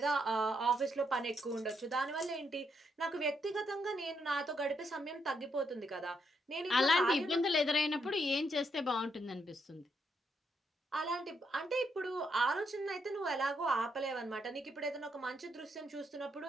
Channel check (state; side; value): normal; both; correlation 0.78